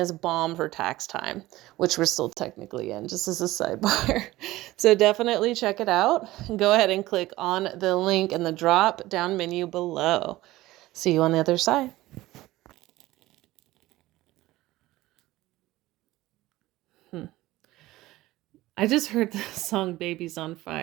bomb for tax time, which we're still technically in, just as a sidebar. So definitely check it out. Go ahead and click on the link in the drop down menu below. See you on the other side. I just heard the song Baby's on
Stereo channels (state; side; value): quieter; left; 17.5 dB